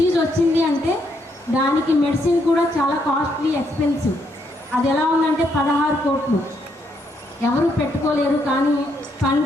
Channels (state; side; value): normal; both; correlation 0.75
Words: వచ్చింది అంటే దానికి మెడిసిన్ కూడా చాలా కాస్ట్లీ, ఎక్స్పెన్సివ్. అది ఎలా ఉందంటే 16 కోట్లు ఎవరు పెట్టుకోలేరు. కానీ